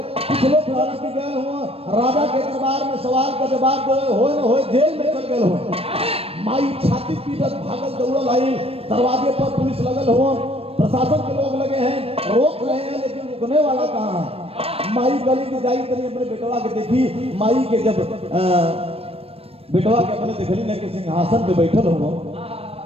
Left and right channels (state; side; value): late; left; 0.28 ms